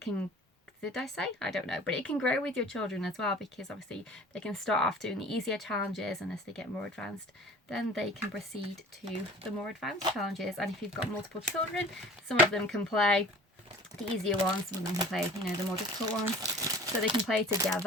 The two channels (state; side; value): normal; both; correlation 0.45